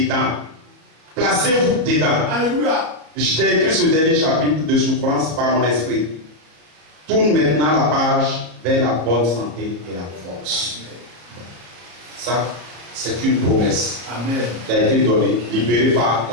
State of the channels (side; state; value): left; late; 33 ms